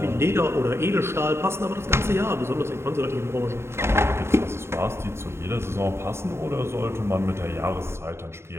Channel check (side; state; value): left; late; 0.12 ms